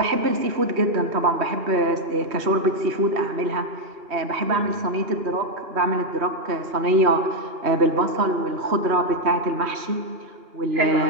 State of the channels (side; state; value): left; late; 2.9 ms